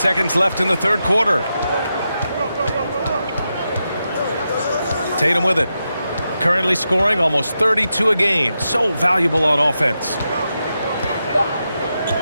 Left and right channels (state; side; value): inverted; both; correlation -0.87